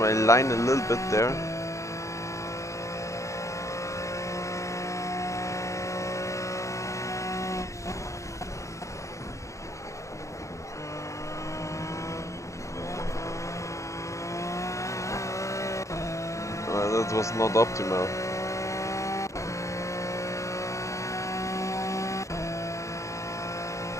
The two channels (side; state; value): right; late; 0.15 ms